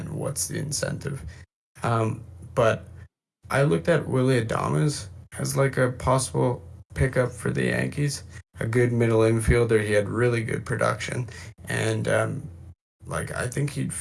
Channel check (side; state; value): both; identical; correlation 1.00